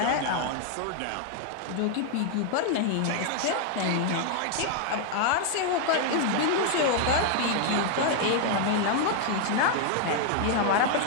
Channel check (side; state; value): both; different; correlation 0.00